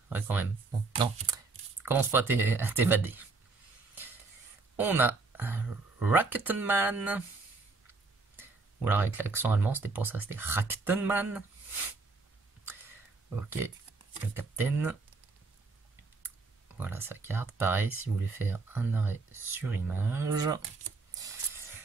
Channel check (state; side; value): quieter; left; 3.8 dB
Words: ouais quand même. Bon, non, commence pas à t'évader. On a Raktenman. Ou alors avec l'accent allemand, c'était pour ça, c'était Raktenman. Ok, le capitaine. Voilà sa carte. Pareil, si vous voulez faire un arrêt sur image.